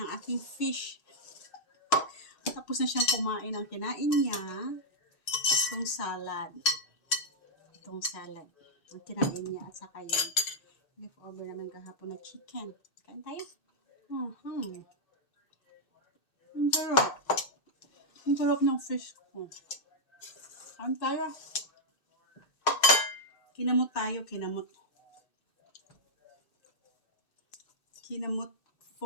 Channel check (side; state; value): right; late; 2.6 ms